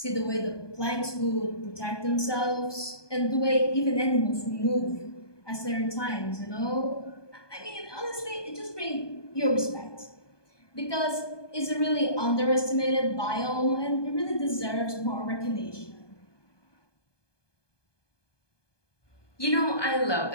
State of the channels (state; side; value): late; right; 1.2 ms